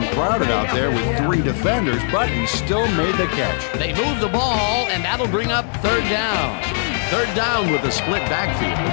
crowded out there with 3 defenders, but he still made the catch. They move the ball, and that'll bring up third down. Third down with a split backfield.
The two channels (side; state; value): right; silent; 65 dB below the other